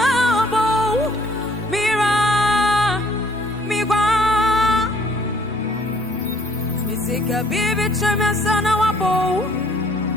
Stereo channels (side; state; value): both; normal; correlation 0.61